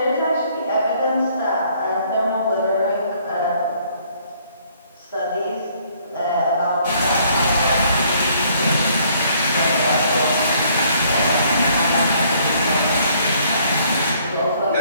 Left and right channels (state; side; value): inverted; both; correlation -0.63